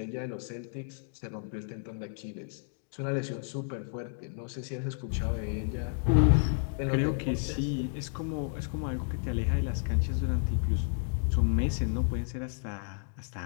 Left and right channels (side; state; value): right; silent; digital silence